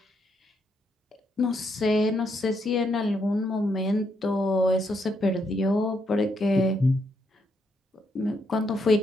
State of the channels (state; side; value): normal; both; correlation 0.77